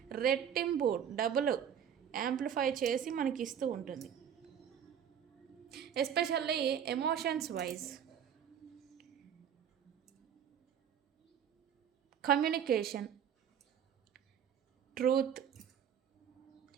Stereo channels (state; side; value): quieter; left; 8.7 dB